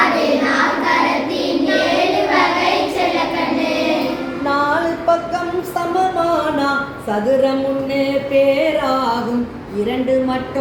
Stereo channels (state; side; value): identical; both; correlation 1.00